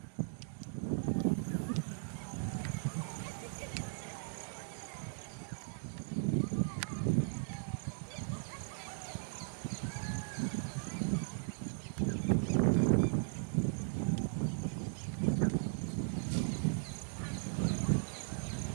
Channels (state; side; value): silent; left; digital silence